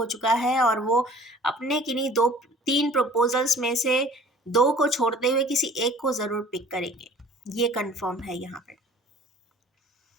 चुका है और वो अपने किन्हीं दो तीन प्रपोजल्स में से दो को छोड़ते हुए किसी एक को ज़रूर पिक करेंगे, ये कंफर्म है यहाँ पर।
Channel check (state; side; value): normal; both; correlation 0.49